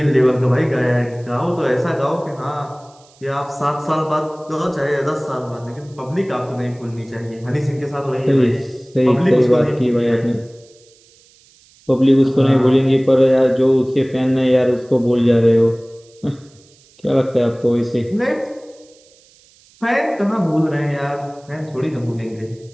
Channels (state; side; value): noise; right; hiss, 29 dB below the sound